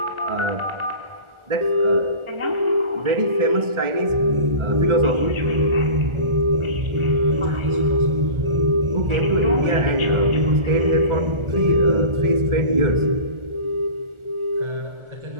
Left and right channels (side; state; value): left; late; 1.4 ms